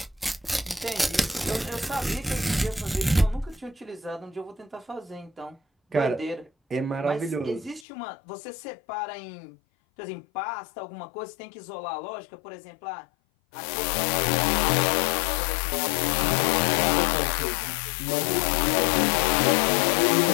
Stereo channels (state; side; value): drops out; right; at 7.9 s